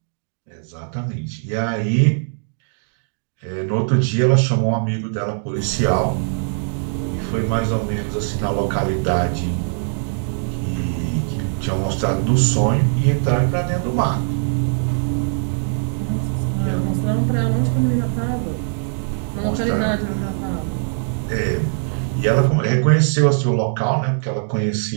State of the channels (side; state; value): left; silent; digital silence